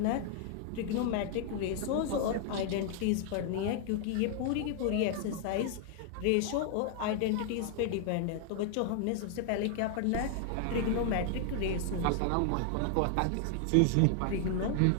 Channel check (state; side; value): different; both; correlation 0.00